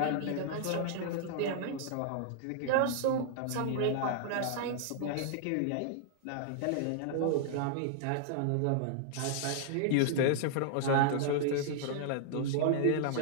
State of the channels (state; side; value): different; both; correlation -0.01